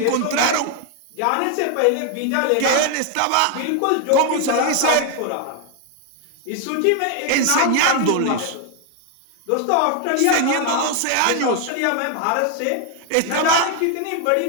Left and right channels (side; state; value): both; different; correlation 0.01